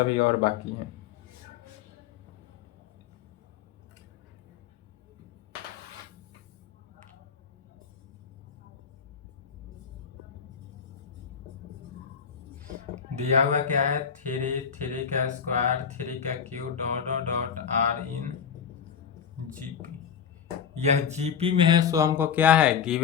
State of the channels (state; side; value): quieter; right; 7.4 dB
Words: और बाकी है। दिया हुआ क्या है? 3 का स्क्वायर, 3 का cube, dot dot dot are in GP. यह जीपी में है, सो हमको क्या है?